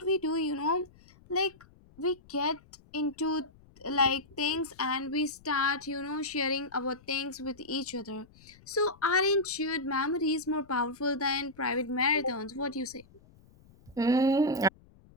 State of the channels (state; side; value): noise; left; rumble, 26 dB below the sound